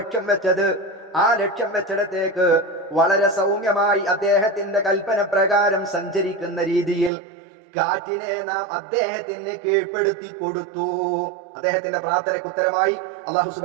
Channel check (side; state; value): left; drops out; at 7.1 s